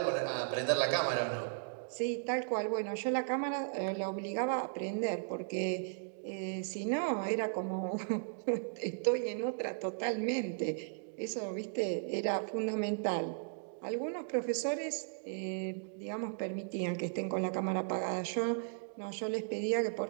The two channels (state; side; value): silent; left; digital silence